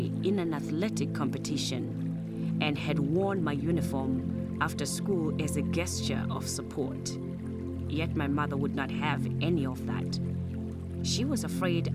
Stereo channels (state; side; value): identical; both; correlation 1.00